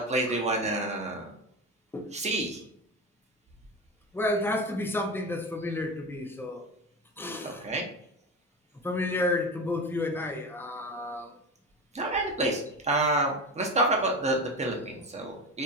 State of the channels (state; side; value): normal; both; correlation 0.24